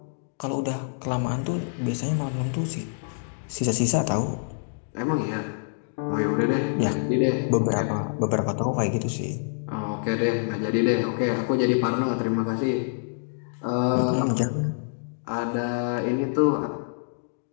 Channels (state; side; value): silent; right; digital silence